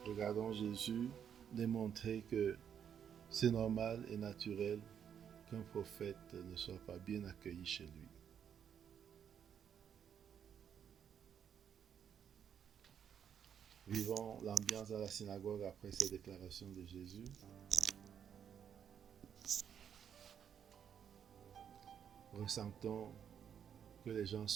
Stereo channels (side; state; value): left; quieter; 8.4 dB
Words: Regardons Jésus démontrer que c'est normal et naturel qu'un prophète ne soit pas bien accueilli chez lui. Vivons l'ambiance à la synagogue après ces déclarations de Jésus. Ressentons que les gens